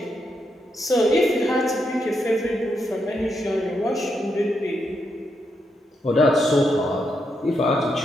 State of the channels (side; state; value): both; normal; correlation 0.81